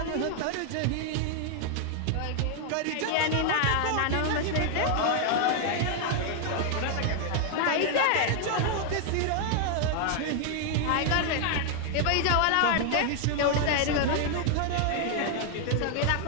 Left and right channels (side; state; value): both; different; correlation 0.00